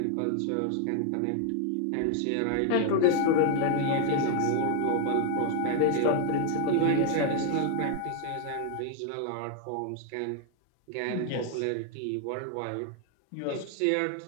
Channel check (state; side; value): different; both; correlation 0.00